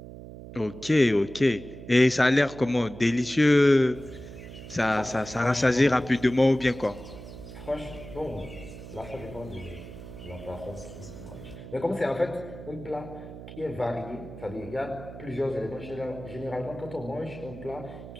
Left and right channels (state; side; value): noise; right; hum, 13 dB below the sound